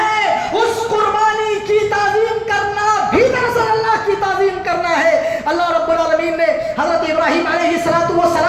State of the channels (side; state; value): both; identical; correlation 1.00